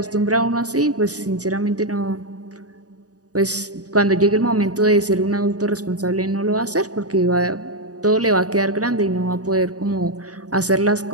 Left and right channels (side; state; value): left; late; 0.67 ms